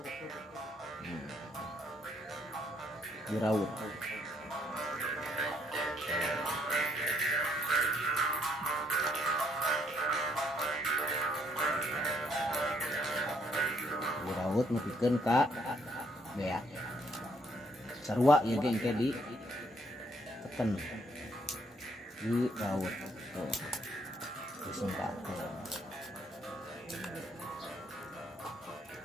Di raut. Di raut nepikeun ka bea. Sarua ieu ge engke di teken. Di raut. Tuh. Disingkat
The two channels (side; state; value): both; normal; correlation 0.69